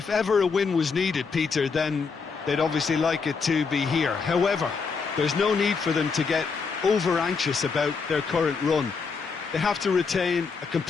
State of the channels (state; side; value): quieter; right; 5.1 dB